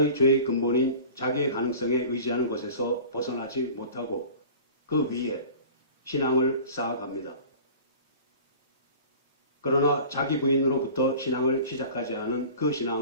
죄의 근본인 자기의 가능성에 의지하는 것에서 벗어나지 못하고 그 위에 신앙을 쌓아갑니다. 그러나 자기 부인으로부터 신앙을 시작하지 않은 그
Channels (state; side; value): inverted; both; correlation -0.41